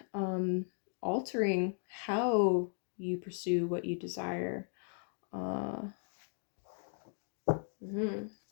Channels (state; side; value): silent; right; 53 dB below the other